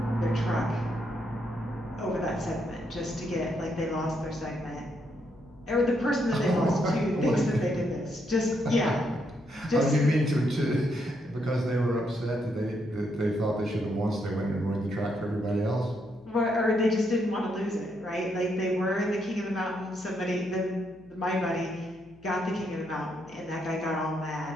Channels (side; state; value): left; noise; hum, 27 dB below the sound